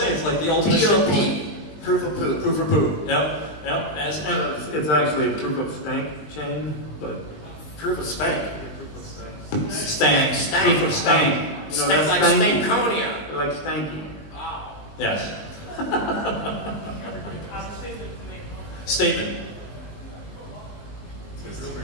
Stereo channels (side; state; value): right; late; 20 ms